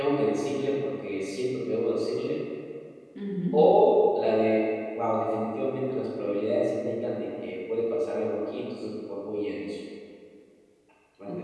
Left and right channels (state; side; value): identical; both; correlation 1.00